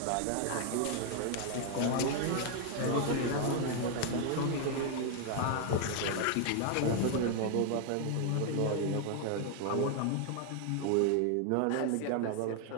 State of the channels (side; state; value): both; different; correlation 0.00